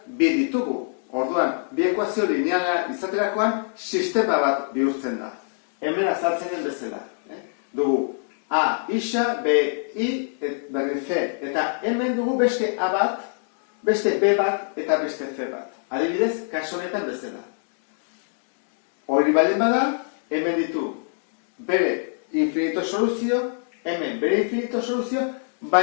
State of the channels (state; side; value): silent; right; digital silence